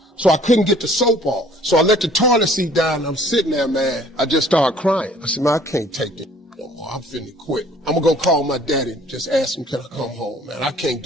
So I couldn't get the soap off. So I let the toilet seat down, and I'm sitting there, man. I just started crying. I said, man, I can't take this no more. I'm finna quit. I'm gonna go call my daddy and just ask him, can I come home, man? I can't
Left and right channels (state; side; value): normal; both; correlation 0.55